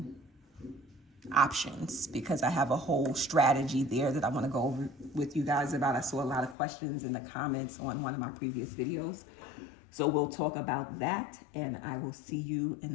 options because I have a whole strategy there that I want to go over with you guys about. I saw a lot of questions in the comments on one of my previous videos. So we'll talk about that, and I will see you in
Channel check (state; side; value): drops out; right; at 6.6 s